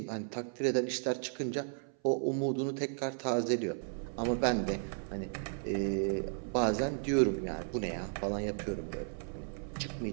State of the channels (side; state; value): left; silent; 55 dB below the other